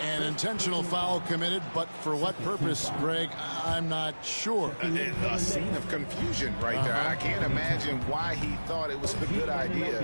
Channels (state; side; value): inverted; both; correlation -1.00